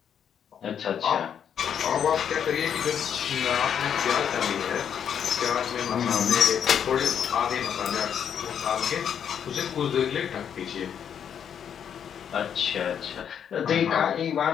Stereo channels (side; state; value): right; quieter; 8.3 dB